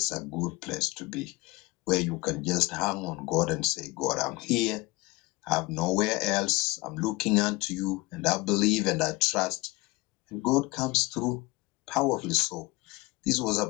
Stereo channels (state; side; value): quieter; right; 22.8 dB